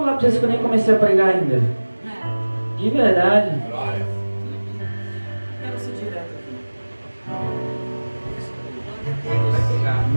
para vocês que eu nem comecei a pregar ainda? De verdade. Quero ser direto aqui. Em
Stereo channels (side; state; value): both; inverted; correlation -1.00